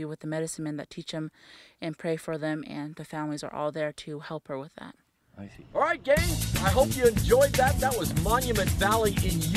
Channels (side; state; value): both; identical; correlation 1.00